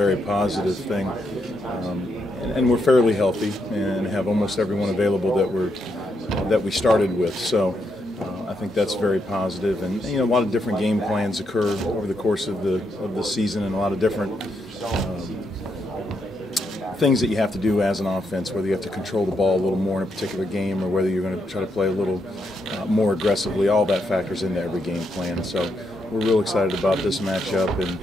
positive thing. And we're fairly healthy and have almost everyone available that we started with. So I think that's very positive. And a lot of different game plans occur over the course of the season, and a lot of different things that you have to do as an offense, whether you have to control the ball a little more in a particular game or whether you're going to try to play a little more aggressively. All that factors into every game plan. So we're real excited about this matchup and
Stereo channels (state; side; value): normal; both; correlation 0.79